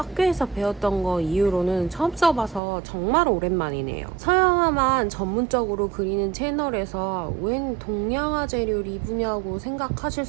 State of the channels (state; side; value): drops out; left; at 2.6 s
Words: 배웠던 거 이후로는 처음 써봐서 정말 오랜만이네요. 서양화만 전문적으로 그리는 채널에서 웬 동양화 재료 리뷰냐고 생각하실